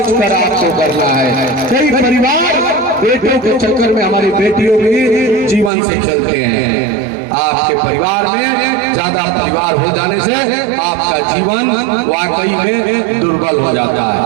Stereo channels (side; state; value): left; drops out; at 5.7 s